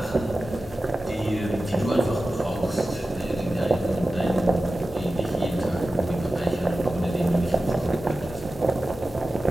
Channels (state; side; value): normal; both; correlation 0.94